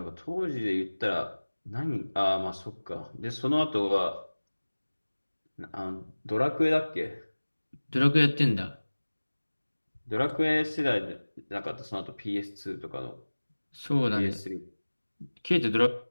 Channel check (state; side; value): inverted; both; correlation -1.00